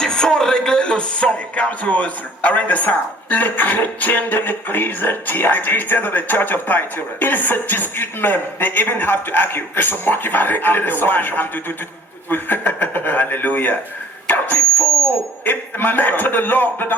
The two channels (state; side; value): normal; both; correlation 0.53